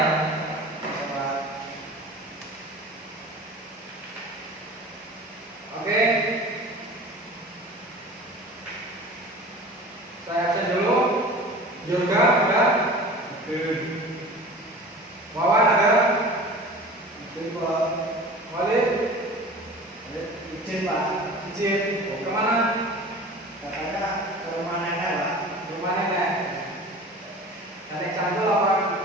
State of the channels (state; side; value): normal; both; correlation 0.39